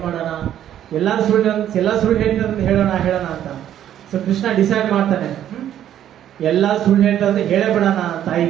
ಎಲ್ಲಾ ಸುಳ್ಳು ಹೇಳ್ತಾರೆ ಹೇಳೋಣ ಅಂತ. ಸೊ ಕೃಷ್ಣ ಡಿಸೈಡ್ ಮಾಡ್ತಾನೆ, ಎಲ್ಲ ಸುಳ್ಳು ಹೇಳ್ತಾರೆ, ಹೇಳೇ ಬಿಡೋಣ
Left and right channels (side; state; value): left; quieter; 11.0 dB